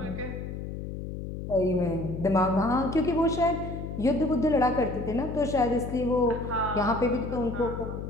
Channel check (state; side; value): noise; left; hum, 7 dB below the sound